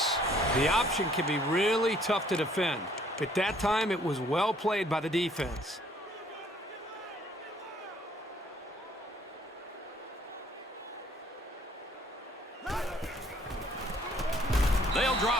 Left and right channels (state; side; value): normal; both; correlation 0.61